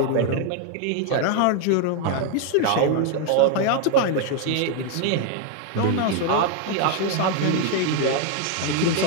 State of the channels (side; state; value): both; different; correlation 0.01